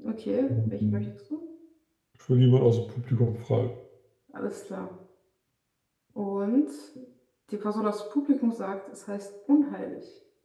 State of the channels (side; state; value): both; identical; correlation 1.00